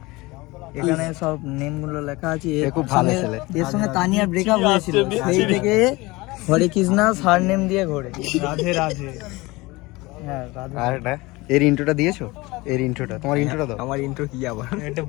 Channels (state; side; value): quieter; right; 22.2 dB